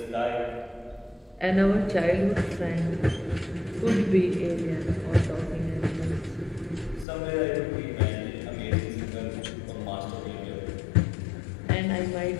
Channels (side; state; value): right; drops out; at 7.1 s